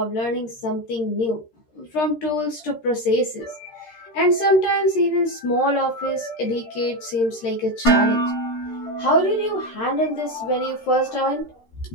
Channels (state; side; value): late; right; 13 ms